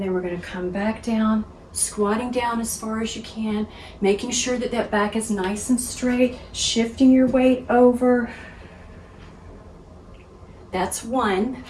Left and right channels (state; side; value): identical; both; correlation 1.00